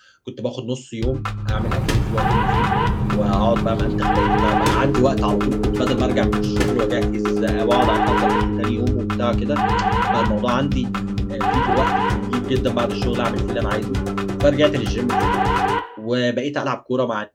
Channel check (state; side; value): identical; both; correlation 1.00